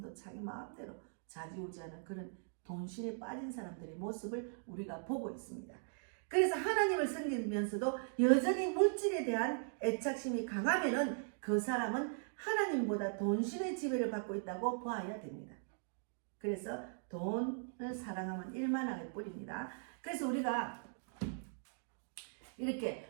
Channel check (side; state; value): left; silent; digital silence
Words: 자기 마음대로 좌지우지하는 그런 돈신에 빠진 사람들의 모습을 우리가 보고 있습니다. 그래서 하나님을 섬기면서도 여전히 물질에 대한 애착심이 강하면은 그 사람은 하나님보다 돈신의 지배를 받고 있다고 보아야 됩니다. 그래서 돈을 사랑하면 일만하게 뿌립니다. 그래서 우리가